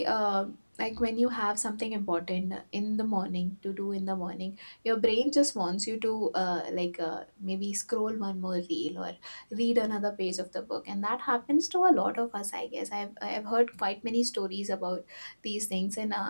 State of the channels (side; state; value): both; inverted; correlation -1.00